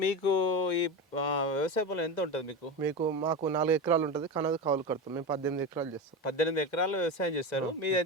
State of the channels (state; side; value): normal; both; correlation 0.21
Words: మీకు ఈ వ్యవసాయ పొలం ఎంత ఉంటుంది మాకు 4 ఎకరాలు ఉంటుంది. కనది కౌలు కడతాం. మేము 18 ఎకరాలు చేస్తాం. 18 ఎకరాలు వ్యవసాయం చేస్తారు.